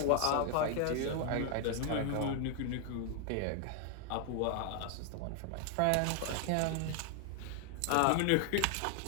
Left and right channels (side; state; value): both; different; correlation 0.00